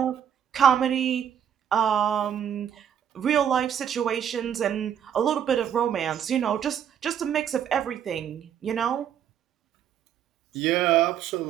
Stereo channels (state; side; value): quieter; left; 9.2 dB